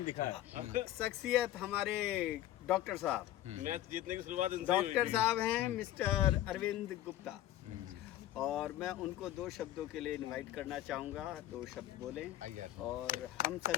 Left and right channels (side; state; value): right; quieter; 13.5 dB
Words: दिखा है। शख्सियत हमारे डॉक्टर साहब, मैच जीतने की शुरुआत डॉक्टर साहब हैं मिस्टर अरविंद गुप्ता, और मैं उनको 2 शब्दों के लिए इनवाइट करना चाहूँगा। 2 शब्द बोलें। और हम